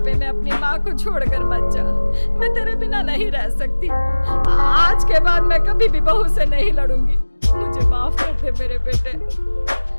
में अपनी माँ को छोड़कर मत जा, मैं तेरे बिना नहीं रह सकती। आज के बाद मैं कभी भी बहू से नहीं लड़ूंगी। मुझे माफ कर दे मेरे बेटे।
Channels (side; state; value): both; inverted; correlation -1.00